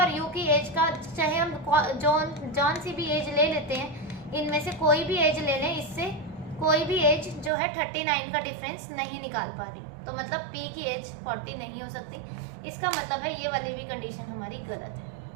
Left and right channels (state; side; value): drops out; left; at 7.5 s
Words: U की एज का चाहे हम जौन सी भी एज ले लेते हैं, इनमें से कोई भी एज ले लें, इससे कोई भी एज जो है 39 का डिफरेंस नहीं निकाल पा रही। तो मतलब P की एज 40 नहीं हो सकती। इसका मतलब है ये वाली भी कंडीशन हमारी गलत है।